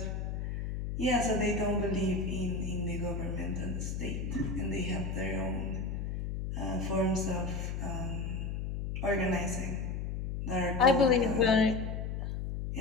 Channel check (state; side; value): noise; left; hum, 3 dB below the sound